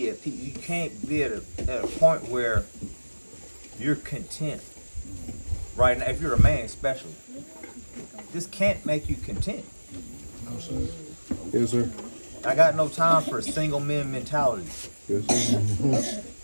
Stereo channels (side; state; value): both; inverted; correlation -1.00